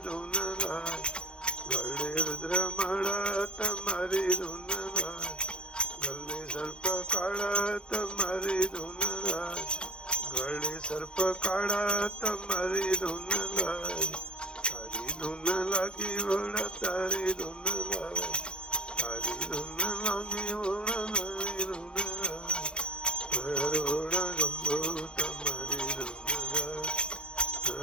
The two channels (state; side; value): late; right; 0.052 ms